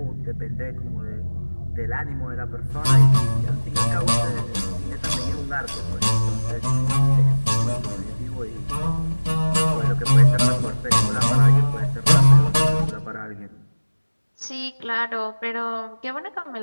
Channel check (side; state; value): both; inverted; correlation -1.00